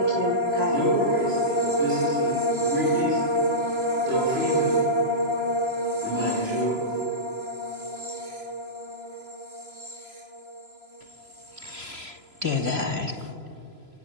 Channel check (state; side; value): late; left; 3.0 ms